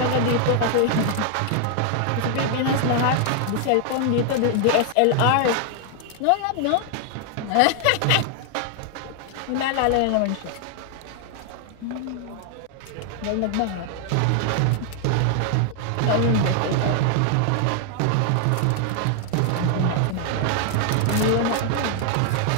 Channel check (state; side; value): different; both; correlation 0.00